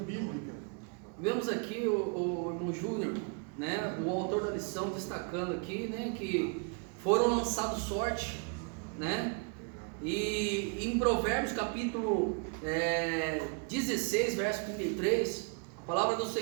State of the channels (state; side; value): quieter; left; 38.3 dB